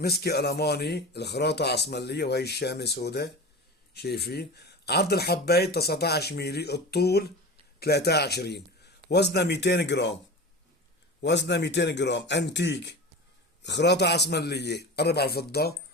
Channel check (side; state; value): both; normal; correlation 0.31